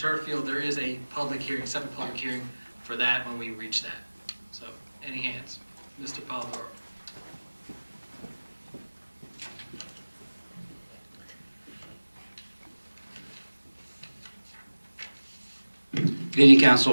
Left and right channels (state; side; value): inverted; both; correlation -1.00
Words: field, there is a public hearing, separate public hearing for that when we reach that. So, any hands? Mr. Polidoro. Good evening,